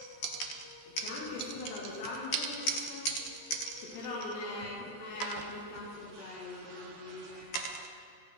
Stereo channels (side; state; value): right; late; 14 ms